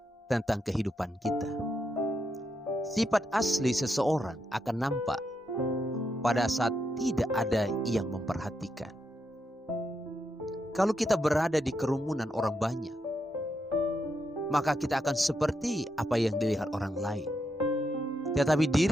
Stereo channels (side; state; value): both; normal; correlation 0.82